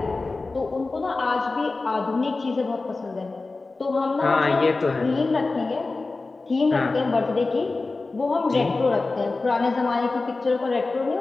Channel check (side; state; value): right; quieter; 3.6 dB